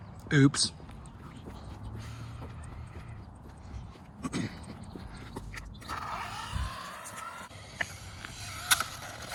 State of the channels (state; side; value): identical; both; correlation 1.00